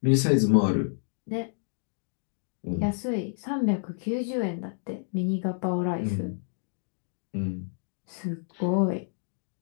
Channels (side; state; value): right; silent; digital silence